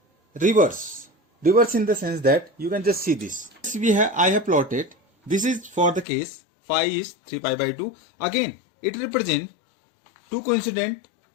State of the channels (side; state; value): right; drops out; at 6.1 s